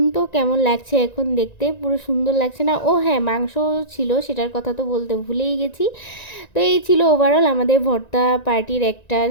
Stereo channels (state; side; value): late; right; 1.9 ms